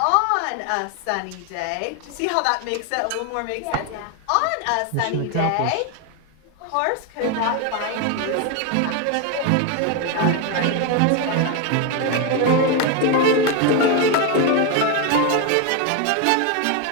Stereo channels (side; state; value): both; different; correlation 0.02